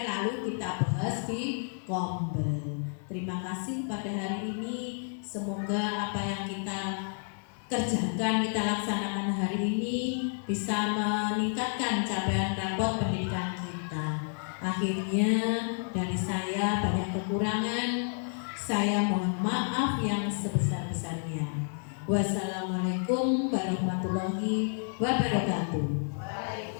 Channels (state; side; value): silent; right; 57 dB below the other